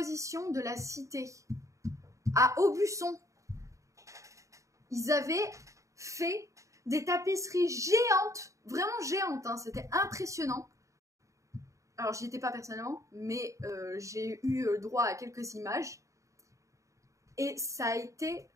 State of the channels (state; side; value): late; left; 0.15 ms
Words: de la cité à Aubusson. Ils avaient fait des tapisseries géantes, vraiment géantes, hein, c'était impressionnant. Alors, j'y étais pas personnellement, mais j'ai eu droit à quelques images. Et ça a été